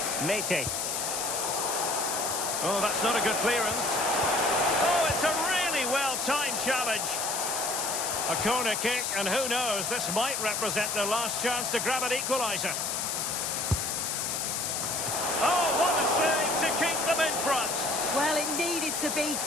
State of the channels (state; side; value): noise; left; hiss, 1 dB below the sound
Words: Mete. Oh, that's not a good clearance. Oh, it's a really well-timed challenge. A corner kick, and who knows, this might represent their last chance to grab an equaliser. Oh, what a save to keep them in front. Well, it needed to be.